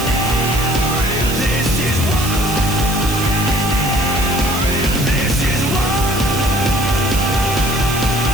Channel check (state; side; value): noise; right; hiss, 8 dB below the sound